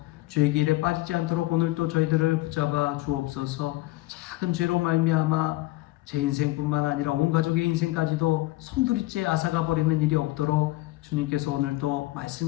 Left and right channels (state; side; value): quieter; right; 18.7 dB